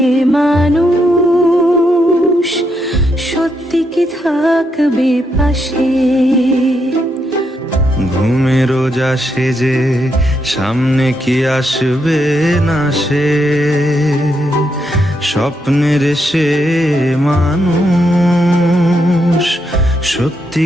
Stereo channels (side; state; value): both; normal; correlation 0.80